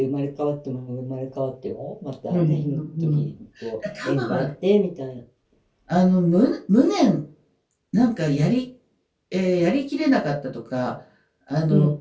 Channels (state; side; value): identical; both; correlation 1.00